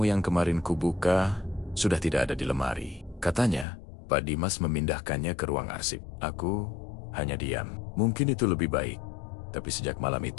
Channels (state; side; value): drops out; right; at 3.7 s